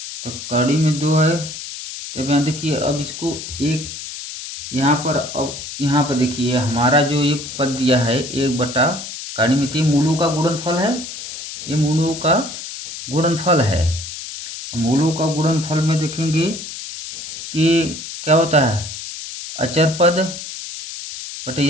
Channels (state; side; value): noise; left; hiss, 9 dB below the sound